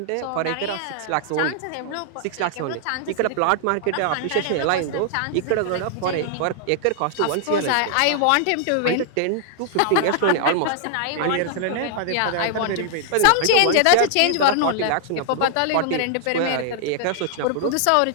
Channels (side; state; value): both; different; correlation -0.01